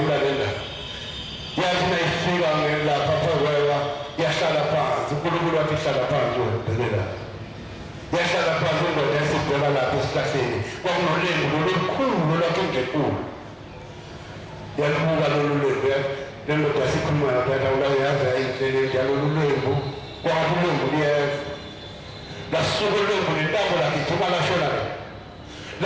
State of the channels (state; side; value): identical; both; correlation 1.00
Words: le ndaba yathi nayifika lapha phakwewa yahlala phansi unkulunkulu wathi ihlala phansi webhelela yahlala phansi indoda esibheka lapha esihlahleni kwakunolembu lolukhulu lwakhe ngekulu yalubuka lolu lembu le ndoda yasikhuluma yaphatha ulayazi ayinhlele njalo lolu lembu kwathi ulembu liyeza lasuka ulembu nentambo lagijima lashona le